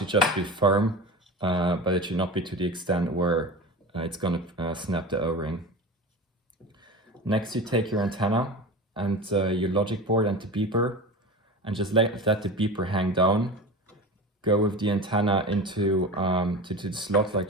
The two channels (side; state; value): both; normal; correlation 0.30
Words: just be firm, but it should not be to the extent where it's going to snap the O-ring. Next you take your antenna and your logic board and the beeper, and just let the beeper hang down. Go with the antenna into to the slot, like